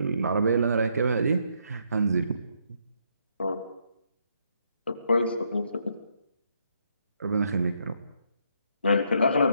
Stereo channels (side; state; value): both; inverted; correlation -0.74